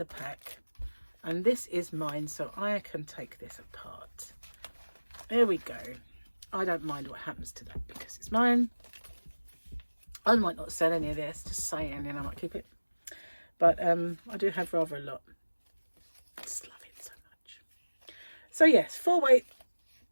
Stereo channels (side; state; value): both; inverted; correlation -1.00